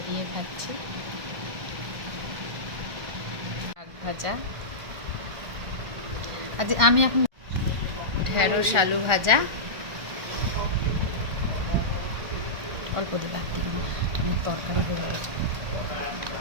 দিয়ে খাচ্ছি। শাক ভাজা, আজ আমি এখন ঢেঁড়স আলু ভাজা, অল্প দিয়ে বাদ দিব না, আমি তরকারি করে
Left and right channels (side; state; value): left; late; 1.4 ms